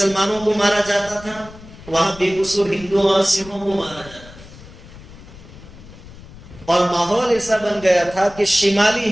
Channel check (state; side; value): noise; left; rumble, 18 dB below the sound